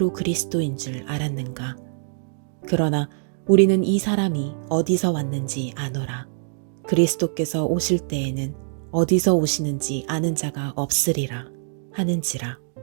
그리스도인 줄 알았는가. 그러나 우리는 이 사람이 어디서 왔는지 아노라. 그리스도께서 오실 때에는 어디서 오시는지 아는 자가 없으리라 하는지라.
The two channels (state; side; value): silent; left; digital silence